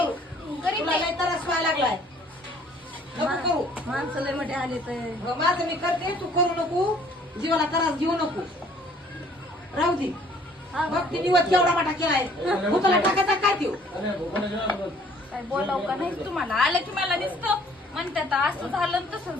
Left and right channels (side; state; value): both; normal; correlation 0.58